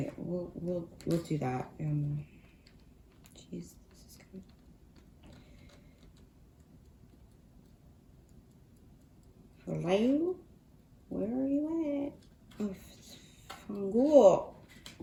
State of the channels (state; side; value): identical; both; correlation 1.00